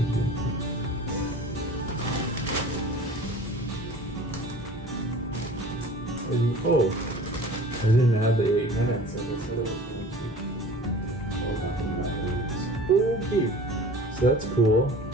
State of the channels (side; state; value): both; normal; correlation 0.43